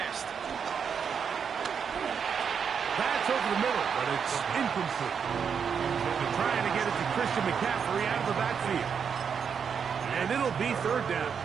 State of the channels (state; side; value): quieter; left; 6.8 dB